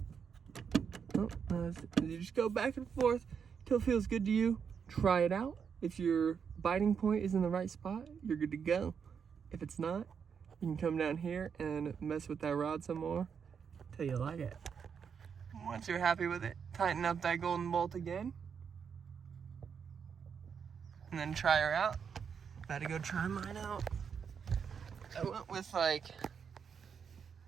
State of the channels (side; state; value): left; quieter; 6.8 dB